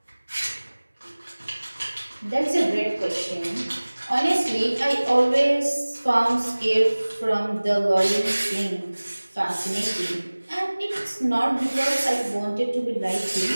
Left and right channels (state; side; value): inverted; both; correlation -1.00